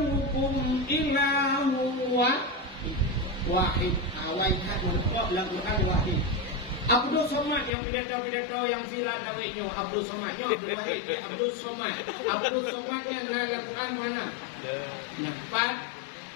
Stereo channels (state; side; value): drops out; right; at 7.7 s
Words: ilahu wahid. Awal hat menekap dalam Quran wahid. Abdul Somad yang pidato-pidato yang viral tawiknya. Abdul Somadnya Abdul Wahid. Abdul Somad. Abdul Somadnya dalam Quran mana? Kat.